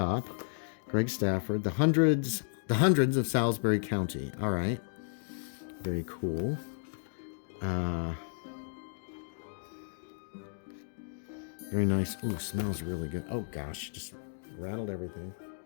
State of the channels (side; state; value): right; silent; digital silence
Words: Greg Stafford, the hundreds of Salisbury County. All right. Very cool. Very nice. Ooh, smells really good. Oh gosh, just rattled everything.